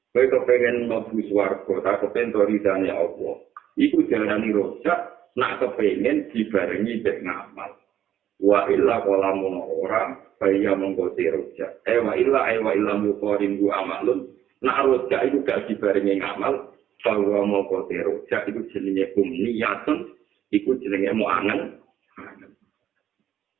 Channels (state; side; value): quieter; left; 10.8 dB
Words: Kowe kepengin mlebu swarga, ta kepengin ridane apa? Iku diarani roja, nak kepengin dibarengi mek ngamal. Wa illa qalamun ora, kaya monggo roja. Wa illa muqarin bu amalun. Nak roja iku gak dibarengi ngamal, bahwa monggo roja iku jenenge umniyatun. Iku jenenge mau angen.